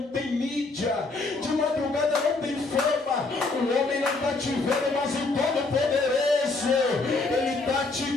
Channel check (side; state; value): right; quieter; 3.5 dB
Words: tem mídia, de madrugada não tem fama. O homem não está te vendo, mas o Todo-Poderoso, Ele está te